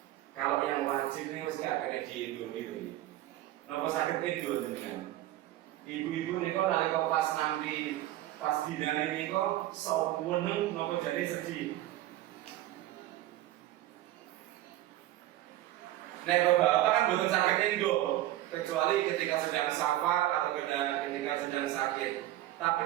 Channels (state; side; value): quieter; left; 14.8 dB